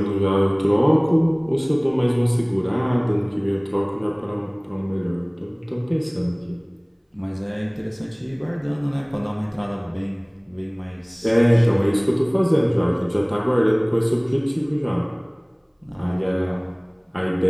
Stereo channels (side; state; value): both; identical; correlation 1.00